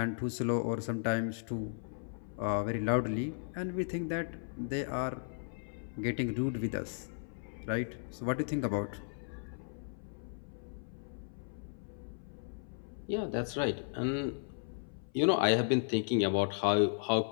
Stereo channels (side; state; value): right; silent; 54 dB below the other